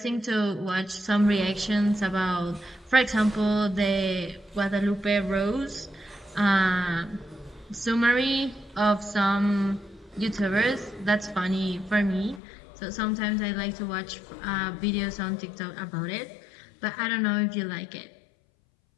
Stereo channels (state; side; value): drops out; right; at 12.4 s